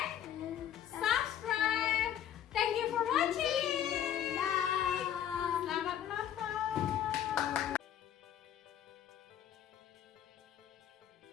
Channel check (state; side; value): quieter; right; 10.3 dB